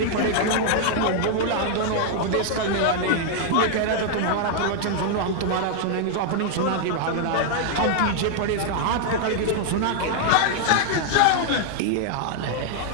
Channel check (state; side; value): different; both; correlation 0.00